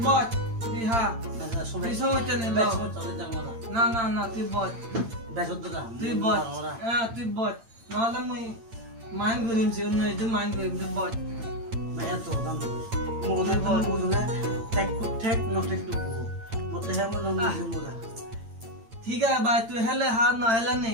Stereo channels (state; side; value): late; left; 8.8 ms